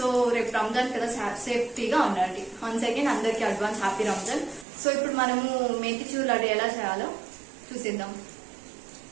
రేపు రంజాన్ కదా, సేఫ్టీగా ఉండండి. వన్స్ అగైన్ అందరికి అడ్వాన్స్ హ్యాపీ రంజాన్. సో ఇప్పుడు మనము మేతిచూర్ లడ్డు ఎలా చేయాలో చూసేద్దాం.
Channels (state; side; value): drops out; left; at 4.7 s